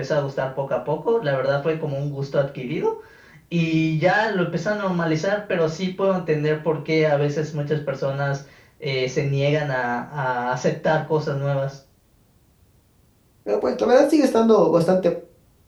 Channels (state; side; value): identical; both; correlation 1.00